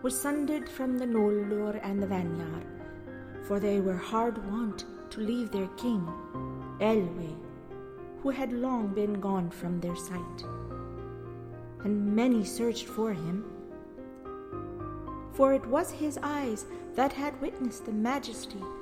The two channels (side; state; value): both; identical; correlation 1.00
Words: was sundered from the Nolder and the Vanyar, for they were hard wont to leave their king, Elwe, who had long been gone from their sight. And many searched for him, for it was his eyes that had witnessed the majesty